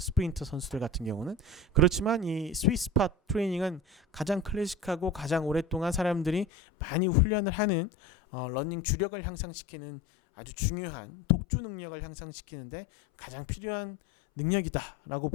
선수들 같은 경우는. 그렇지만 이 스윗 스팟 트레이닝은 가장 클래식하고 가장 오랫동안 사람들이 많이 훈련을 하는 러닝 주력을 향상시키는 아주 중요한 독주 능력을 향상시키는데 가장 필요한 능력이다라고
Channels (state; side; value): drops out; right; at 6.5 s